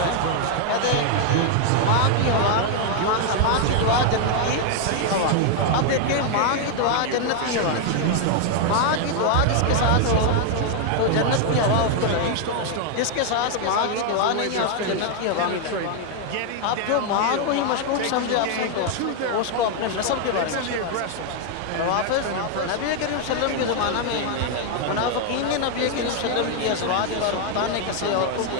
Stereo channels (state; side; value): different; both; correlation 0.00